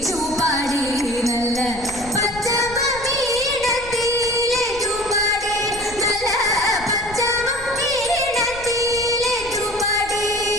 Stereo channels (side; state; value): left; noise; rumble, 16 dB below the sound